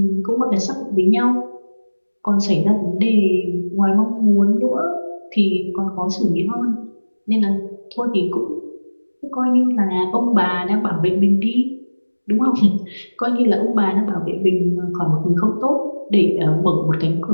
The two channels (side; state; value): both; inverted; correlation -1.00